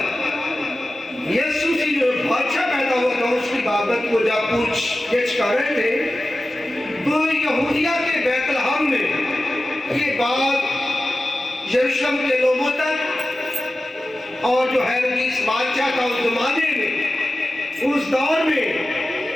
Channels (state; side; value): normal; both; correlation 0.95